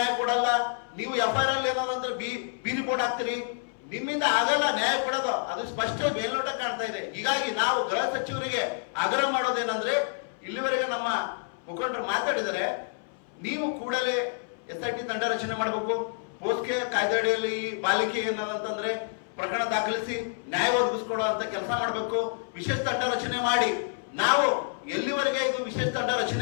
ಕೊಡಲ್ಲ. ನೀವು FIR ಅಲ್ಲಿ ಏನದಂದ್ರೆ ಬೀದಿ ಬೋರ್ಡ್ ಹಾಕ್ತೀರಿ, ನಿಮ್ಮಿಂದ ಆಗಲ್ಲ ನ್ಯಾಯ ಕೊಡೋದು, ಅದು ಸ್ಪಷ್ಟ ಮೇಲ್ನೋಟ ಕಾಣ್ತಾ ಇದೆ. ಹೀಗಾಗಿ ನಾವು ಗೃಹ ಸಚಿವರಿಗೆ ಆಗ್ರಹ ಮಾಡೋದೇನಂದ್ರೆ ಇಲ್ಲಿವರೆಗೆ ನಮ್ಮ ಮುಖಂಡರು ಮಾತಾಡಿದರೆ ನೀವು ಕೂಡಲೇ SIT ತಂಡ ರಚನೆ ಮಾಡಬೇಕು, ಪೋಸ್ಕೆ ಕಾಯ್ದೆಯಡಿಯಲ್ಲಿ ಈ ಬಾಲಿಕೆ ಏನದಂತಂದ್ರೆ ಪ್ರಕರಣ ದಾಖಲಿಸಿ ನ್ಯಾಯ ಒದಗಿಸ್ಕೊಡೋ ಅಂತ ಕೆಲಸ ಮಾಡಬೇಕು. ವಿಶೇಷ ತಂಡ ರಚನೆ ಮಾಡಿ ನಾವು ಎಲ್ಲಿವರೆಗೆ ಇದು ವಿಶೇಷ ತಂಡ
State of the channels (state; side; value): silent; right; 59 dB below the other